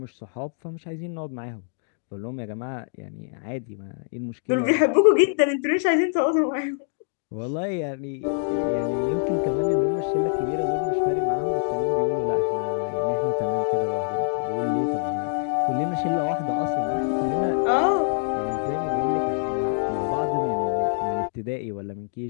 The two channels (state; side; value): silent; right; digital silence